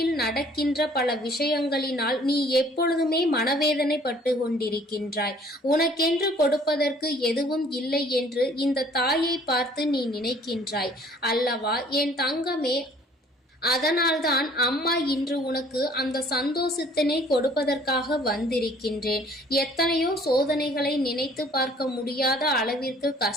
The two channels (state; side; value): normal; both; correlation 0.56